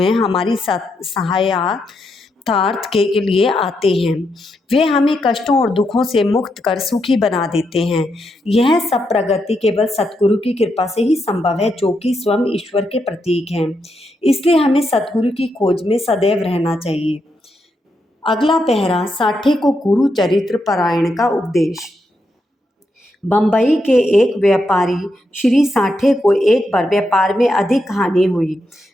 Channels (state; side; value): normal; both; correlation 0.82